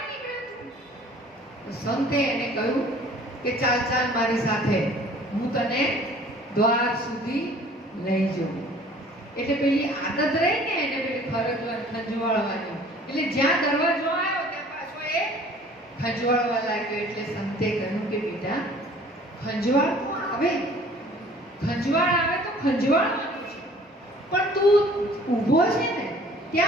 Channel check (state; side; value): normal; both; correlation 0.51